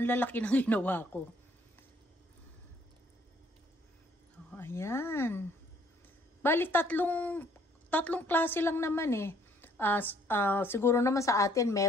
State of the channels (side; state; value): both; normal; correlation 0.63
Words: lalaki ng ginawa ko. Oh, ayan. Bali tatlong klase lang naman eh. Siguro naman sa atin